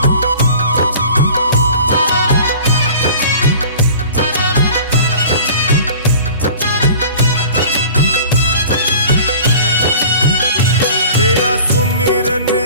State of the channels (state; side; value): inverted; both; correlation -0.44